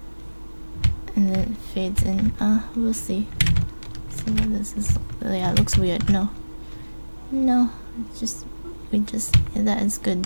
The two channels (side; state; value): both; inverted; correlation -1.00